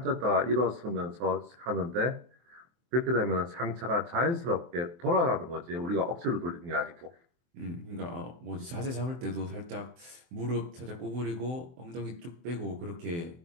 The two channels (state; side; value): late; left; 23 ms